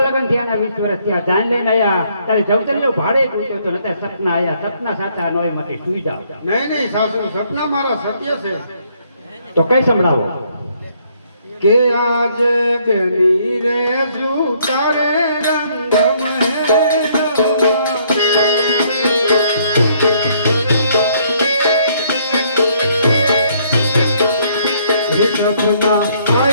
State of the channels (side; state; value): both; inverted; correlation -0.67